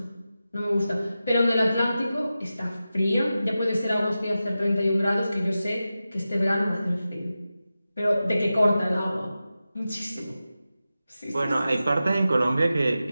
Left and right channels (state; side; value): inverted; both; correlation -0.93